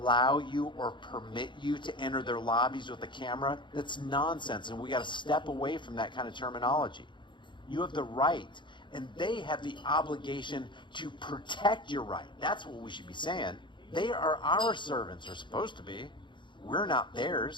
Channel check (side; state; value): right; late; 0.23 ms